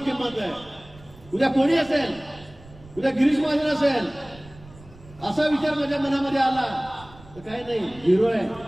आहे. उद्या कोणी असेल, उद्या गिरीश महाजन असेल असा विचार माझ्या मनामध्ये आला तर काही नाही, हिरो आहे.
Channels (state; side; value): noise; right; rumble, 22 dB below the sound